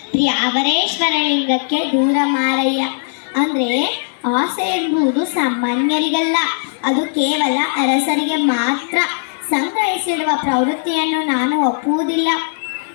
ಪ್ರಿಯ ಅವರೇಶ್ವರ ಲಿಂಗಕ್ಕೆ ದೂರ ಮಾರಯ್ಯ. ಅಂದರೆ ಆಸೆ ಎಂಬುದು ಸಾಮಾನ್ಯರಿಗಲ್ಲ, ಅದು ಕೇವಲ ಅರಸರಿಗೆ ಮಾತ್ರ. ಸಂಗ್ರಹಿಸಿಡುವ ಪ್ರವೃತ್ತಿಯನ್ನು ನಾನು ಒಪ್ಪುವುದಿಲ್ಲ.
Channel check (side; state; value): right; silent; digital silence